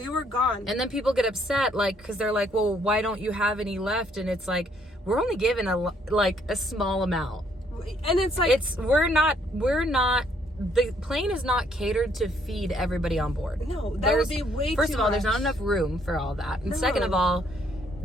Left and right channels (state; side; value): normal; both; correlation 0.68